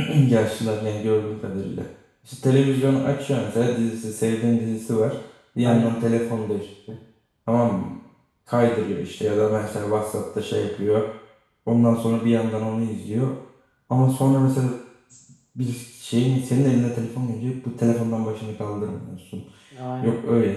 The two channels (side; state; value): both; identical; correlation 1.00